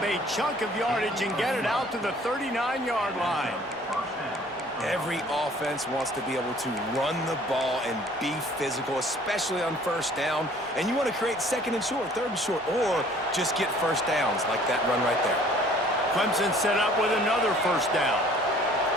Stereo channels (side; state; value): both; normal; correlation 0.54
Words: a chunk of yardage and get it out to the 39-yard line. Every offense wants to be able to run the ball and be physical, especially on first down. And you want to create second and short, third and short, or just get first downs like that run right there. Clemson set up with another first down.